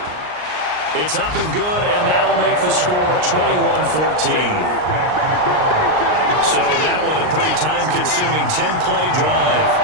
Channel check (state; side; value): late; left; 39 ms